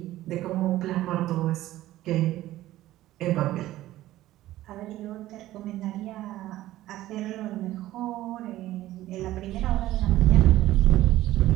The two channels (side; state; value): left; quieter; 15.2 dB